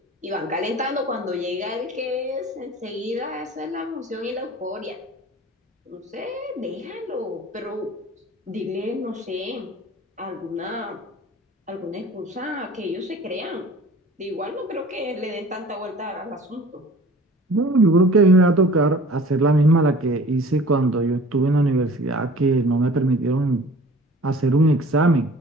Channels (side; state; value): both; normal; correlation 0.45